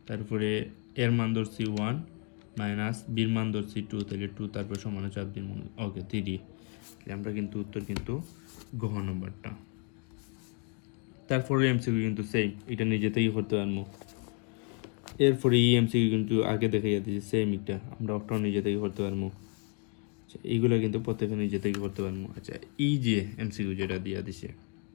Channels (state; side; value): quieter; right; 35.5 dB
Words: তারপরে এর মান ধরছি 1 মাইনাস বির মান ধরছি 2, তাহলে 2, তারপর সমান চাপ দিব, ওকে 3, আমরা কিন্তু উত্তর কিন্তু গ্রহ নম্বরটা। তারপরে এমসিকিউ কিন্তু সেম, এটা নিজে থেকেই করতে পারবো। এরপরে এই এমসিকিউ কিন্তু আগে দেখাইয়া দিয়েছে সেম একটা, আমরা ওটাও নিজে থেকে করতে পারবো। আচ্ছা, এইগুলো কিন্তু প্রত্যেকে নিজে থেকে করতে পারবো। আচ্ছা, এই যে এমসিকিউ যেটা দিয়া দিছে